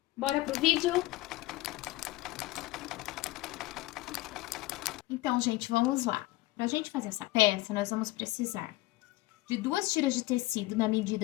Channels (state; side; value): quieter; right; 18.7 dB